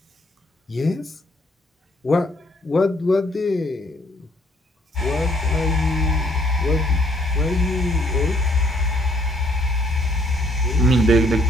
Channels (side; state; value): both; normal; correlation 0.67